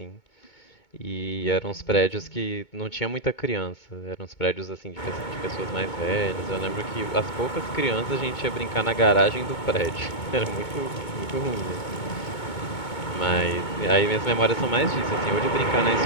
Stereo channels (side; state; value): right; late; 2.2 ms